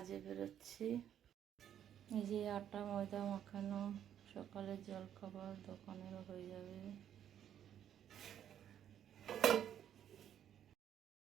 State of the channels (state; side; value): quieter; left; 10.0 dB